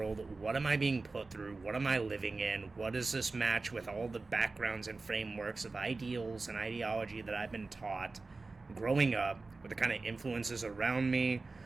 What am I being put through? What am I living in? What does this match with all the backgrounds and frameworks of ideals and ideology that I've been taught growing up, with the kind of influences around me?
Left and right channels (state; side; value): quieter; left; 3.7 dB